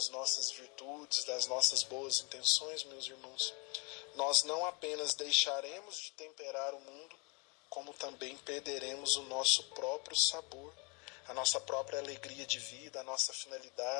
nossas virtudes, das nossas boas intenções, meus irmãos, nós não apenas deixaremos de temperar o mundo, como também perderemos o nosso próprio sabor, a nossa própria alegria de vida, a nossa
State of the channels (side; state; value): right; quieter; 32.2 dB